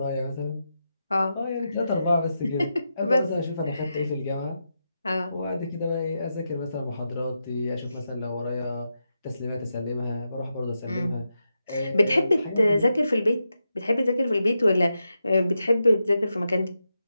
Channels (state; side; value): inverted; both; correlation -0.87